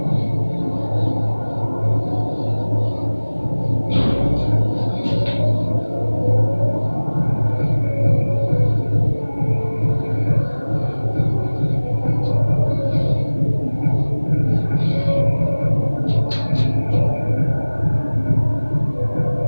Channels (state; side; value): inverted; both; correlation -1.00